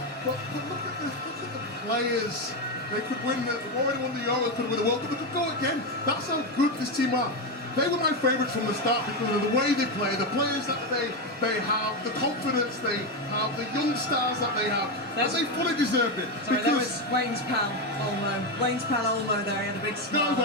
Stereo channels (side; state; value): both; normal; correlation 0.10